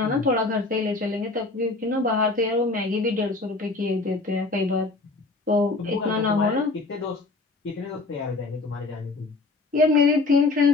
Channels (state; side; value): quieter; right; 3.6 dB